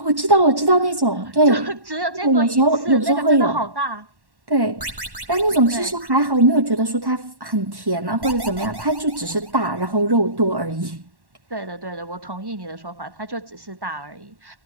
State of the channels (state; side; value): late; left; 1.1 ms